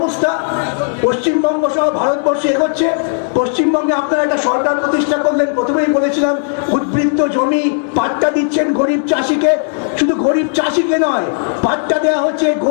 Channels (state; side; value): silent; right; digital silence